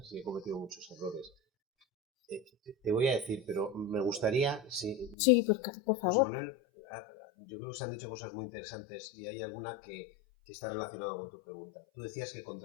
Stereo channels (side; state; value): right; drops out; at 5.2 s